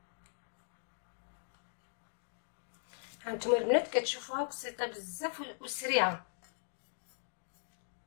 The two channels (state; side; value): silent; right; digital silence